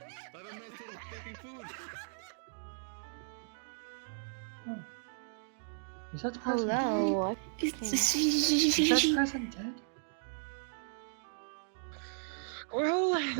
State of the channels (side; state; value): left; silent; digital silence